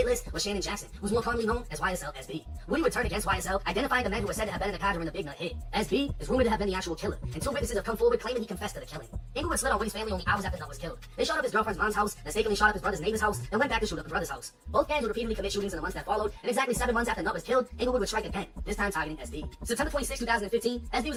list was Shannon Jackson, who's more commonly known as YSL SB. Woody would turn against YSL, identifying the men who were said to have been in the car during the Big Nut hit. SB is rumored to have been the actual killer, and 2 witnesses have come forward claiming he confessed to the killing. Inglewood slid on Woody's family only hours after Nut was killed. They shot up his girlfriend's mom's house, mistakenly shot up his brother's neighbor's house, and went back to shoot up the brother's house. Both gangs would repeatedly commit shootings in the months that followed, and exactly 7 months after Nut was killed, Inglewood would strike again, this time targeting SB. September 26, 2015, SB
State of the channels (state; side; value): identical; both; correlation 1.00